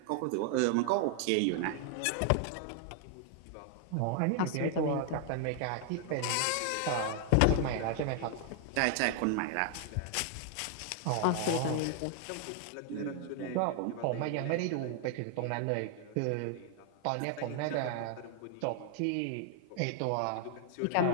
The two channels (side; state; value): both; different; correlation 0.00